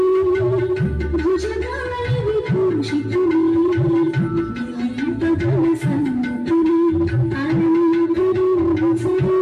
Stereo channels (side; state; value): both; identical; correlation 1.00